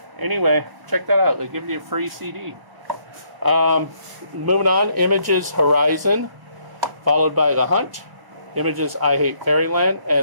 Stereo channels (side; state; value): left; late; 1.0 ms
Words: Anyway, check that out. They give you a free CD. Moving on, Images Horizon, followed by The Hunt. Images I Hate Fairyland,